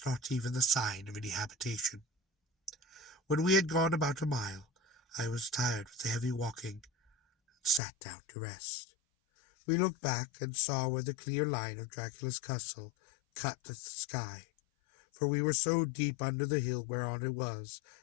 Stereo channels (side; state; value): right; drops out; at 7.8 s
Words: not even the sign of any habitation. When we had gone about a mile, I was tired with the heavy walking, and sat down to rest. We looked back and saw where the clear line of Dracula's castle cut the sky, for we were so deep under the hill whereon it was